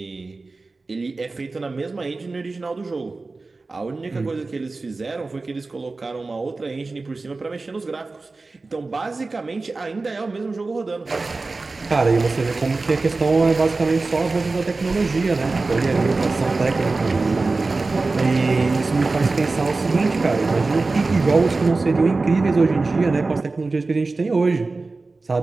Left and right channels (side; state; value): left; quieter; 3.6 dB